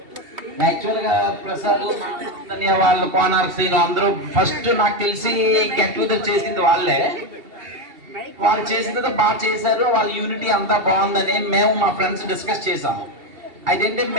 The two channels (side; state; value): left; late; 2.7 ms